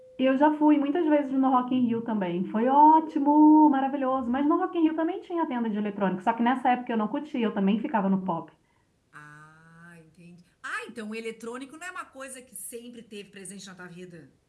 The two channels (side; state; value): both; identical; correlation 1.00